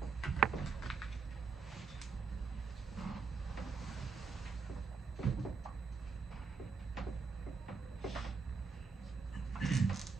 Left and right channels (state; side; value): quieter; left; 5.1 dB